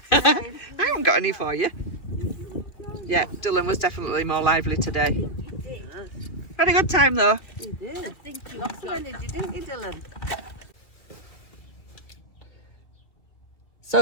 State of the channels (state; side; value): late; right; 2.1 ms